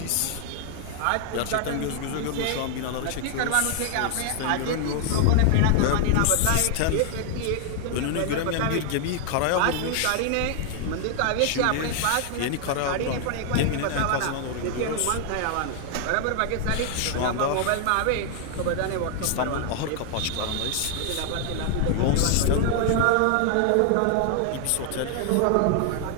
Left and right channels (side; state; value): both; different; correlation 0.00